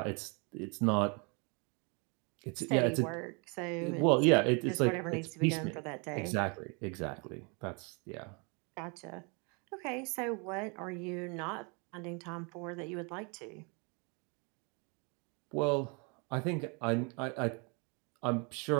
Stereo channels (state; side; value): quieter; left; 32.9 dB